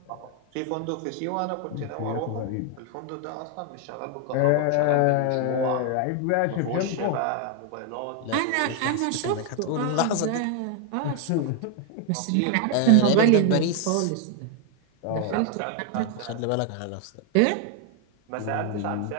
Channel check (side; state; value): both; different; correlation 0.01